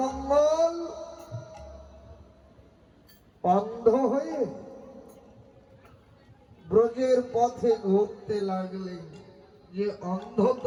অন্ধ হয়ে ব্রজের পথে ঘুরতে লাগলেন, যে অন্ধ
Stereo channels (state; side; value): identical; both; correlation 1.00